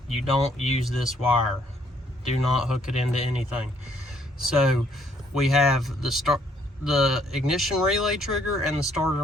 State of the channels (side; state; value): both; normal; correlation 0.67